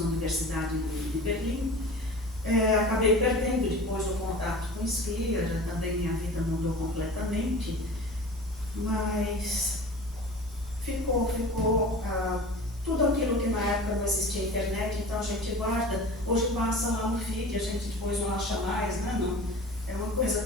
Universidade de Berlim. Acabei perdendo depois o contato com Scliar, também minha vida mudou completamente, mas ficou tudo aquilo que na época não existia internet, então a gente guarda, hoje passa lá no feed, a gente depois não acha mais, né? Não, é uma coisa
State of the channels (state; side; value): normal; both; correlation 0.38